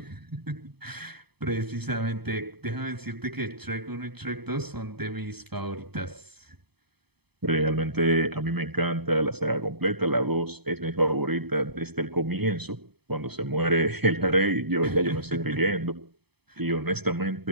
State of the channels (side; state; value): left; late; 0.98 ms